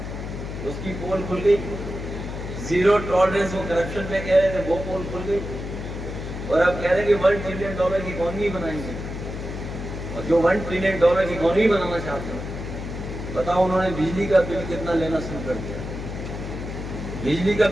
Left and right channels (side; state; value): left; noise; hum, 7 dB below the sound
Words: उसकी पोल खुल गई। जीरो टॉलरेंस वो करप्शन पे कह रहे थे, वो पोल खुल गई। और अब कह रहे हैं कि $1 ट्रिलियन की इकोनॉमी बनाएंगे। और जो $1 ट्रिलियन की इकोनॉमी बनाना चाहते हैं, बताओ उन्होंने बिजली का बिल कितना लेना शुरू कर दिया? बिजली का